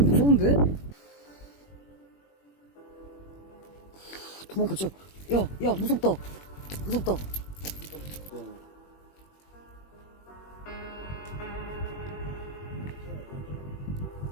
무서운데? 도망가자. 야, 무섭다. 무섭다.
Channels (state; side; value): late; right; 21 ms